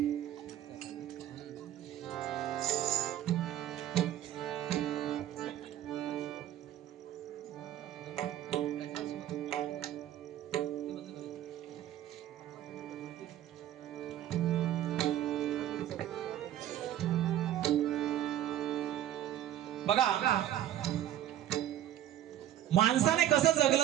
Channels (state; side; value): quieter; left; 12.1 dB